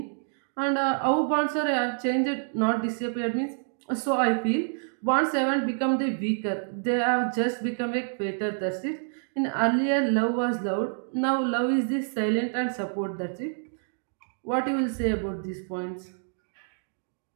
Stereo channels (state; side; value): silent; left; digital silence